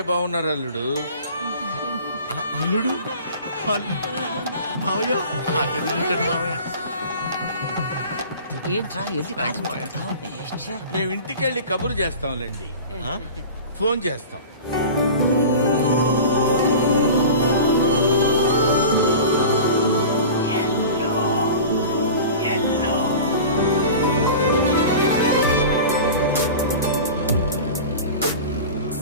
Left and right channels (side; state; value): both; inverted; correlation -0.36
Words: బాగున్నారు అల్లుడు. అల్లుడు మావయ్య, మేము ఇంటికి వెళ్ళి కబురు చేస్తాంలేండి. ఫోన్ చేస్తాం.